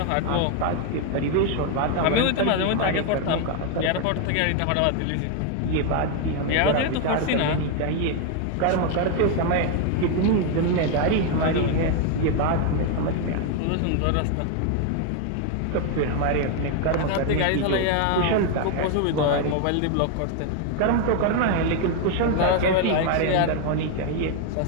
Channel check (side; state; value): both; different; correlation 0.01